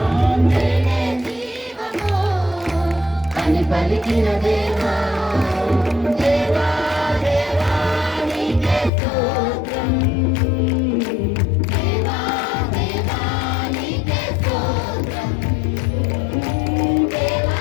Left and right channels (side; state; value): right; drops out; at 8.9 s